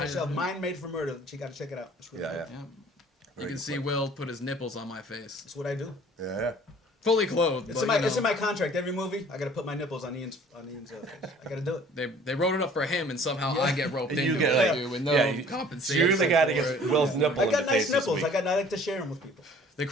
I- yourself. Mind Made for Murder. You got to check it out. It's really Yeah, good. yeah. Yeah. Very You can good see point. Will put his nipples on my face. That's what I do. Yeah. Fully clothed. It's but, in my you know, it's in my contract. Every movie, I got to put my nipples on Ian's face. I got to do it. They wrote it up for him, and somehow I get roped And into you get, it, like- dude, with no yeah, you- compensation. You're the guy that for gets it. Will's nipple I in the got face nice this nipples. week. I like to share them with people They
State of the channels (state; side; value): normal; both; correlation 0.52